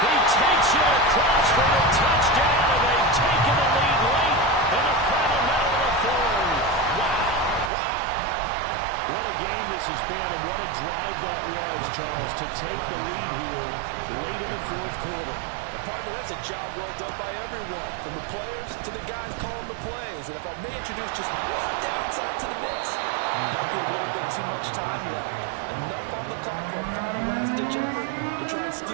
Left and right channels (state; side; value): drops out; left; at 7.7 s